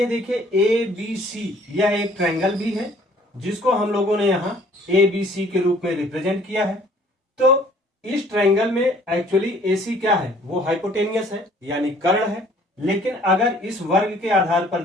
देखिए ए बी सी यह एक ट्रायंगल भी है जिसको हम लोगों ने यहाँ ए बी सी के रूप में रिप्रेजेंट किया है। तो इस ट्रायंगल में एक्चुअली ए सी क्या है, वो हाइपोटेनियस है यानी कर्ण है। लेकिन अगर इस वर्ग के आधार पर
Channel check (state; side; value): normal; both; correlation 0.56